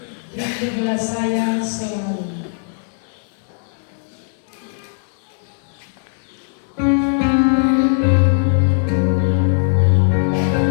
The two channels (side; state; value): right; silent; digital silence